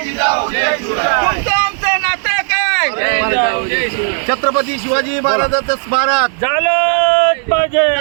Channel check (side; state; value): left; silent; 56 dB below the other